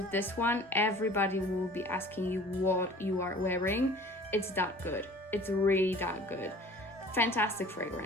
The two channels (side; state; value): both; normal; correlation 0.47